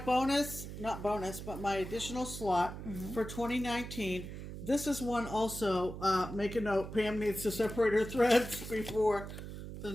my additional slot for 2019. This is one also, make a note, Pam needs to separate her threads before the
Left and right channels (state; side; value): noise; right; hum, 9 dB below the sound